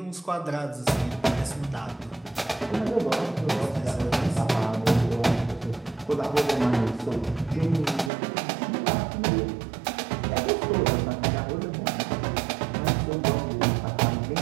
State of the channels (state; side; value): drops out; left; at 8.1 s